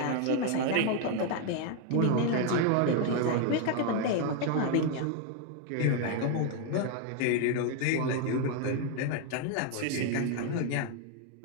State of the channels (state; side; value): different; both; correlation 0.01